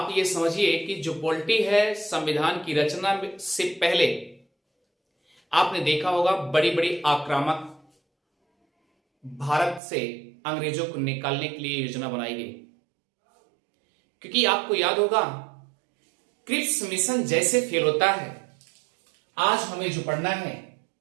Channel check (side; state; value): left; drops out; at 9.8 s